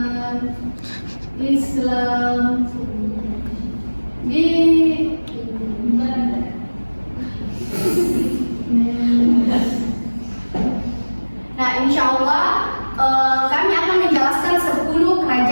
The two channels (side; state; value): both; inverted; correlation -1.00